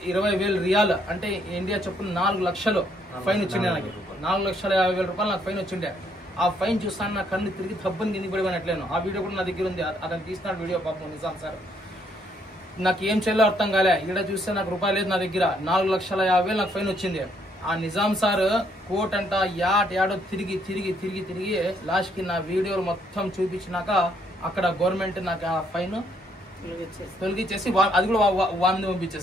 రియాల్ అంటే ఇండియా చొప్పున 4 లక్షలు ఫైన్ వచ్చిండే. నాకు 4,50,000 రూపాయలు నాకు ఫైన్ వచ్చిండే. ఆ ఫైన్ చూస్తాను నా కన్ను తిరిగి తబ్బని కిందికి పడిపోయినట్లేను. ఆ వీడియో కూడా నా దగ్గర ఉంది, అతను తీసినాడు వీడియో పాపం నిజాం సార్. నాకు ఏం చేయాలో అర్థం కాలే. ఇక్కడ చూస్తే నాకు రూపాయలు లేదు నా దగ్గర, 4,50,000 నాకు ఫైన్ వచ్చింది. ఆ నిజాం సార్ కోర్ట్ అంట యాడో తిరిగి తిరిగి తిరిగి తిరిగి లాస్ట్కి నా వీడియోలు మొత్తం చూపించినాక అక్కడ గవర్నమెంట్ నాకు ఆ ఫైన్ తొలగించేసి అది కూడా వాని మీద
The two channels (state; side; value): normal; both; correlation 0.70